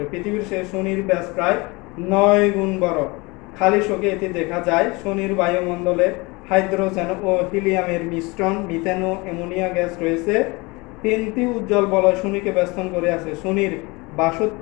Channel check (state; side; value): quieter; right; 25.5 dB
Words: পৃথিবীর সেই শনির ব্যাস প্রায় 9 গুণ বড়। খালি চোখে এটি দেখা যায়। শনির বায়ুমণ্ডলে হাইড্রোজেন ও হিলিয়ামের মিশ্রণ, মিথেন ও অ্যামোনিয়া গ্যাস রয়েছে। 3টি উজ্জ্বল বলয় শনিকে বেষ্টন করে আছে। শনির